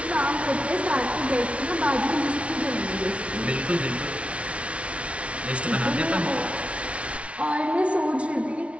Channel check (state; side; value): late; left; 0.062 ms